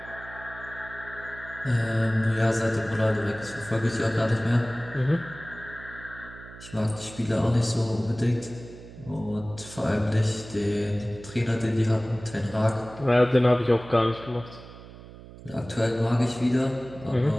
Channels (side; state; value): right; noise; hum, 17 dB below the sound